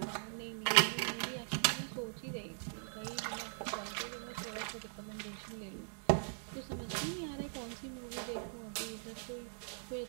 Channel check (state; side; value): silent; left; digital silence